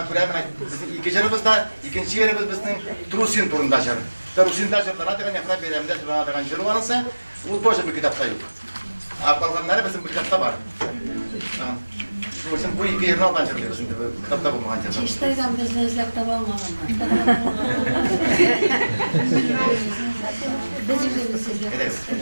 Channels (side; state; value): both; inverted; correlation -1.00